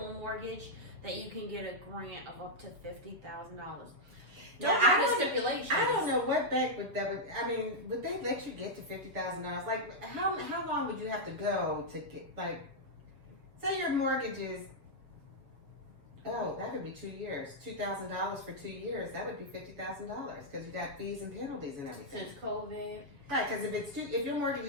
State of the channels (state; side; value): late; left; 7.0 ms